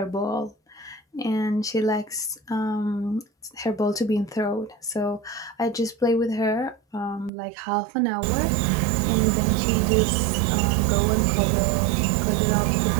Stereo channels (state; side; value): drops out; left; at 7.3 s